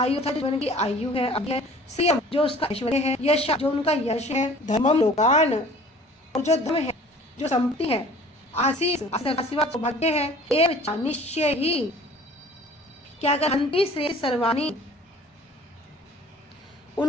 था जीवन की आयु है, अब है सीएम जो उसका ऐश्वर्य है, यश जो उनका यश है, धर्मम लोकान और जो धर्म है, जो संपत्ति है, आशीष सौभाग्य है, एवं निश्चय ही क्या कर, हन्ति श्रेय सर्वाणि,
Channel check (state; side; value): normal; both; correlation 0.48